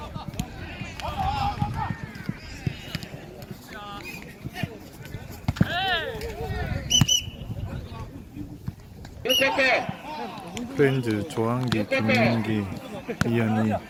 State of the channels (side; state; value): both; identical; correlation 1.00